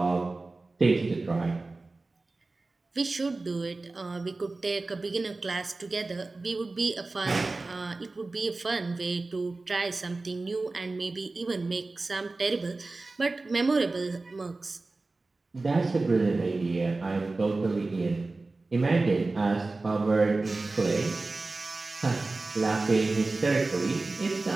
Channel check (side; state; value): left; quieter; 3.4 dB